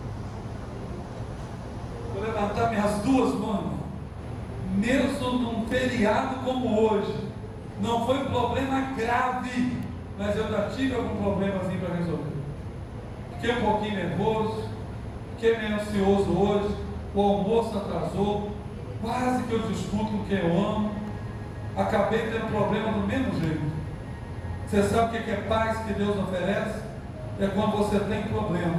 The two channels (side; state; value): both; identical; correlation 1.00